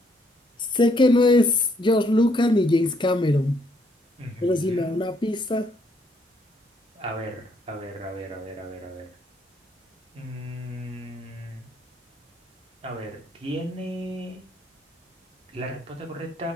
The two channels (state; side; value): normal; both; correlation 0.70